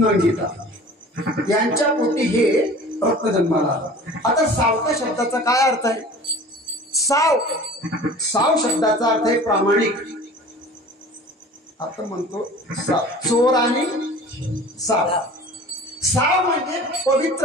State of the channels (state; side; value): normal; both; correlation 0.42